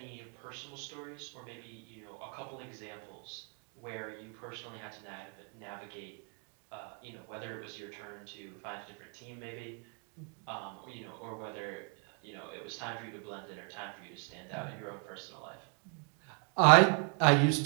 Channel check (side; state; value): left; quieter; 39.5 dB